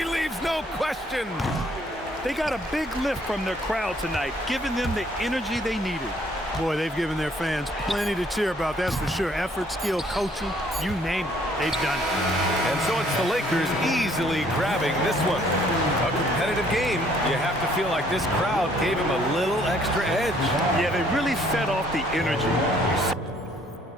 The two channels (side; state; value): both; normal; correlation 0.63